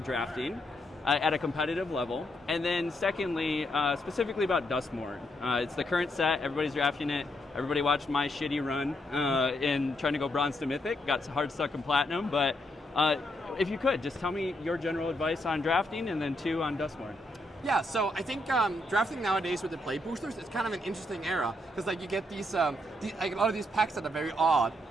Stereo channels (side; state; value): both; normal; correlation 0.78